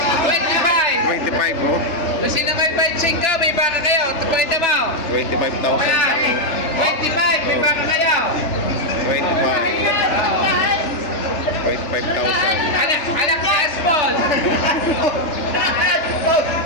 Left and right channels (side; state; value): right; late; 3.3 ms